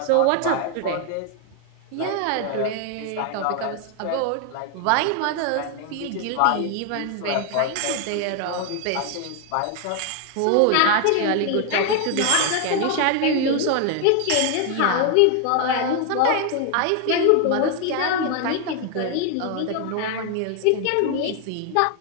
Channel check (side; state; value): both; different; correlation 0.00